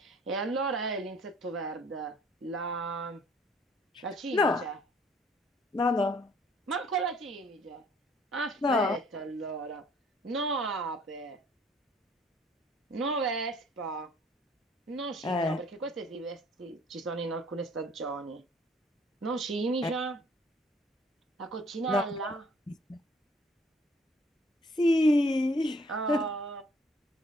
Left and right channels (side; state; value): both; normal; correlation 0.58